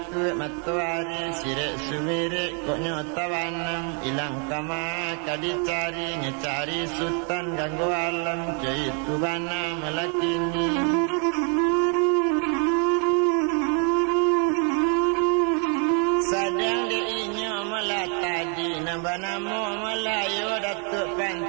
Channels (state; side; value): quieter; left; 39.7 dB